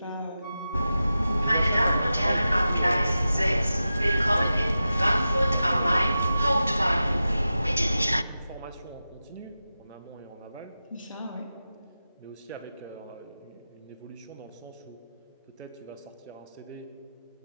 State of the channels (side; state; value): both; inverted; correlation -0.92